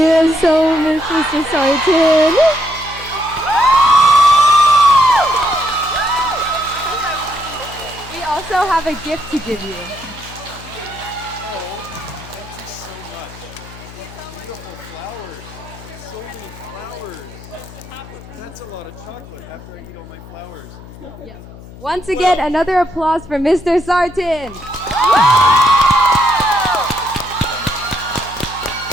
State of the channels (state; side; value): noise; left; hum, 17 dB below the sound